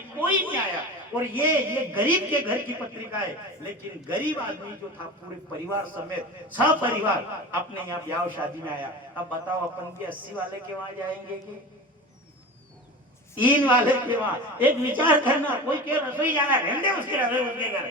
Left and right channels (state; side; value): normal; both; correlation 0.31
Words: कोई नहीं आया। और ये गरीब के घर की पत्रिका है, लेकिन गरीब आदमी जो था पूरे परिवार समेत सब परिवार अपने यहाँ ब्याह शादी में आया। अब बताओ अपन भी 80 वाले के वहां जाएंगे कि 3 वाले के वहां? एक विचार करना, कोई के रसोई जाना, रहने उसके रसोई उसके घर,